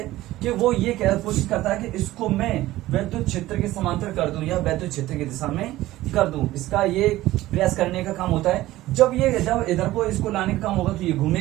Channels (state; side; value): quieter; left; 16.3 dB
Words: कि वो ये कोशिश करता है कि इसको मैं वैद्युत क्षेत्र के समांतर कर दूं या वैद्युत क्षेत्र की दिशा में कर दूं। इसका ये प्रयास करने का काम होता है। जब इधर को इसको लाने का काम होगा तो ये